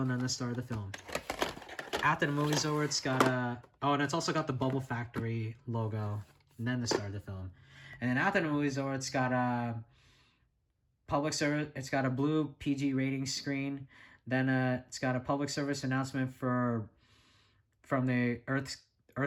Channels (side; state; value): both; identical; correlation 1.00